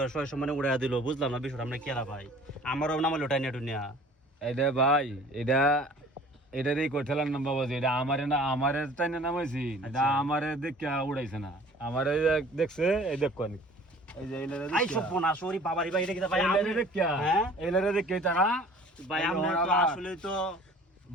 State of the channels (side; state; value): both; normal; correlation 0.48